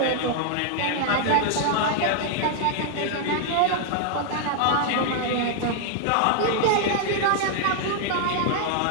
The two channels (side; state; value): both; different; correlation 0.00